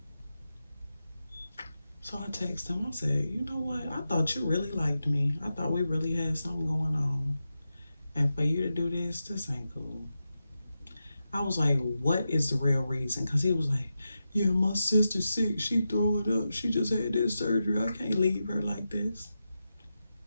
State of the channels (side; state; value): both; inverted; correlation -0.90